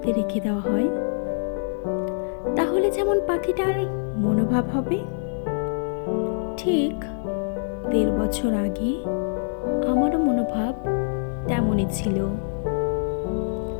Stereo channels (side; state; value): right; silent; 62 dB below the other